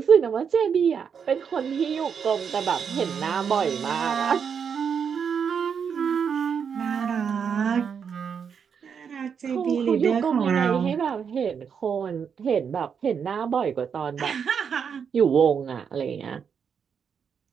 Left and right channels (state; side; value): quieter; left; 6.9 dB